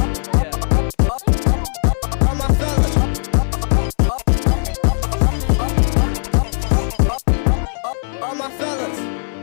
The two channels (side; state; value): right; silent; 67 dB below the other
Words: all my fellas,